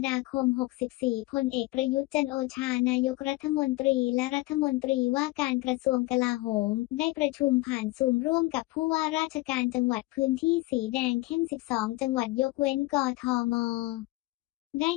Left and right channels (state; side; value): quieter; right; 21.1 dB